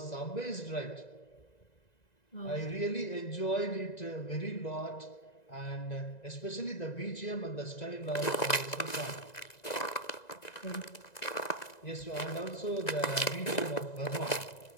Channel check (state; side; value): late; right; 1.9 ms